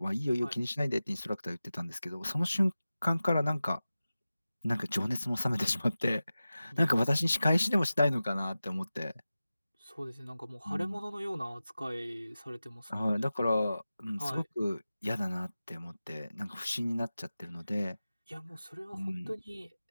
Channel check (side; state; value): both; inverted; correlation -0.95